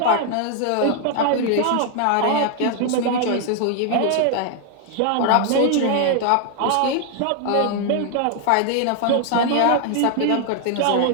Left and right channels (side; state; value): both; different; correlation 0.00